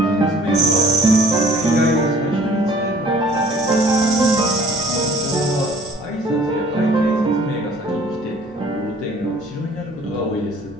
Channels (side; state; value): both; normal; correlation 0.53